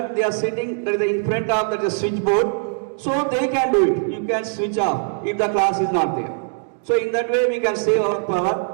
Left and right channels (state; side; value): silent; left; digital silence